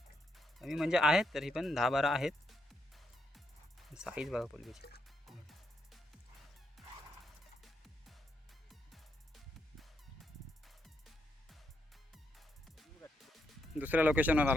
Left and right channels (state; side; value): normal; both; correlation 0.79